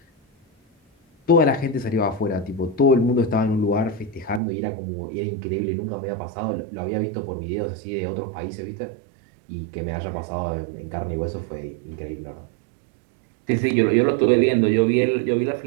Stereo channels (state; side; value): drops out; left; at 4.4 s